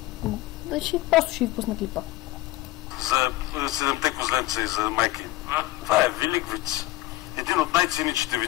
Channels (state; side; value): quieter; right; 17.6 dB